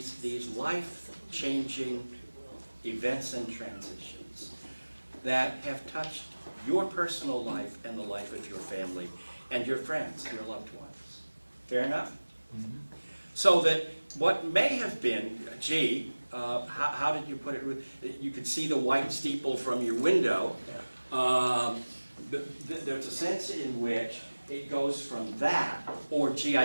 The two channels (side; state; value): both; inverted; correlation -1.00